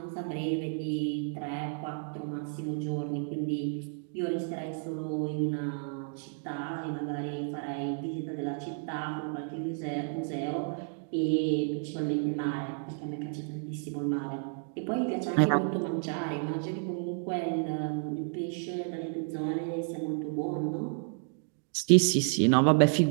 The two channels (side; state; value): left; silent; 57 dB below the other